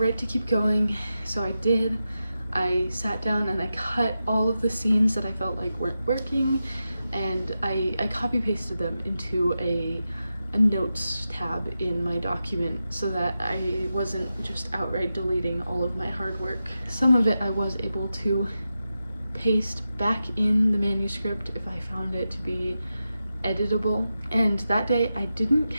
to keep going, so I did. I sat down and I cut all of the scenes that I felt like weren't working, and I copy pasted them into a notes tab in my document so that I wasn't just outright deleting all of my hard work. Some of it I was able to paste back in the manuscript if I found it to be editable, and that day I didn't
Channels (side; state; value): both; inverted; correlation -0.91